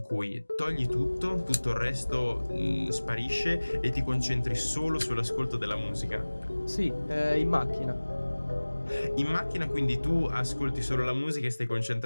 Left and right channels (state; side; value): inverted; both; correlation -1.00